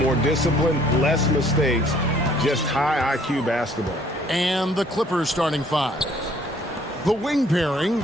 discipline, less mistakes, just high IQ basketball. And the Clippers starting five. The wing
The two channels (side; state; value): both; normal; correlation 0.60